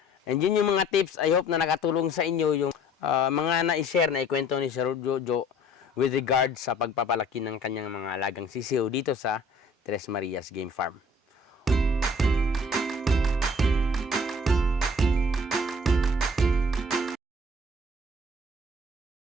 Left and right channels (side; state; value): both; normal; correlation 0.53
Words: And yun yung mga tips, I hope na nakatulong sa inyo yung mga na-share na ikwento ni Sir Jojo with regard sa pagpapalaki ng kanyang mga alagang sisiw dito sa Tres Marias Game Farm.